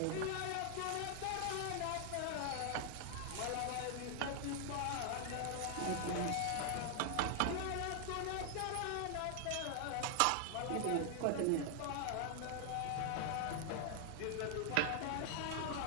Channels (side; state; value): both; different; correlation 0.00